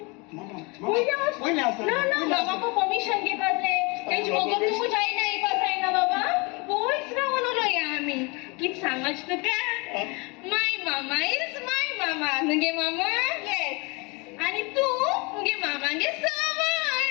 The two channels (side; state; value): right; quieter; 28.6 dB